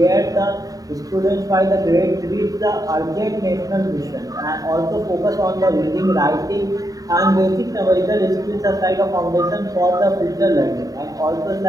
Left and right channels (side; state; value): left; late; 0.18 ms